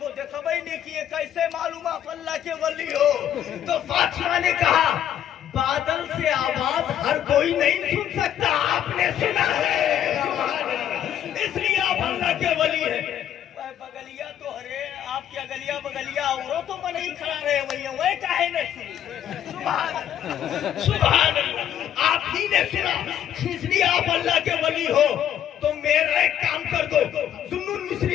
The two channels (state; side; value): quieter; right; 10.4 dB